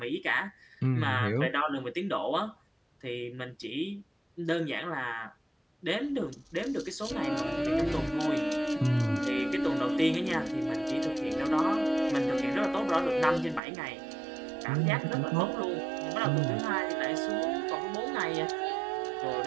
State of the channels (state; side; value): drops out; left; at 13.6 s